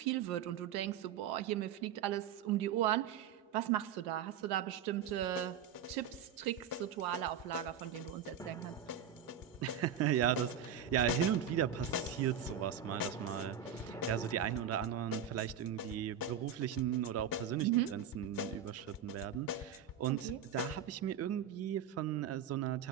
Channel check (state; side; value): quieter; left; 8.0 dB